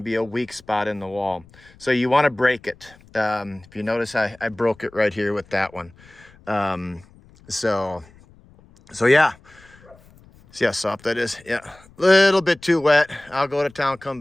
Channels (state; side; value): noise; left; rumble, 26 dB below the sound